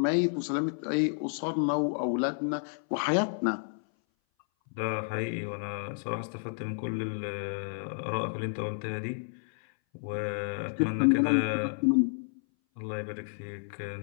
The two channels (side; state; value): right; silent; 57 dB below the other